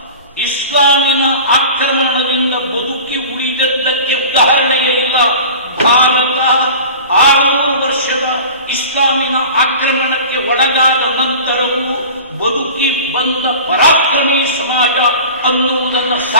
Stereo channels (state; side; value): inverted; both; correlation -0.38